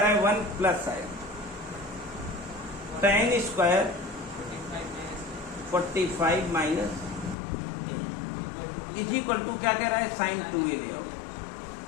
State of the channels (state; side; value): drops out; right; at 7.4 s